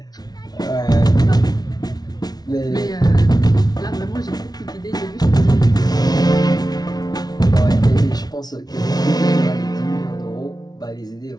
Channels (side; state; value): right; late; 0.19 ms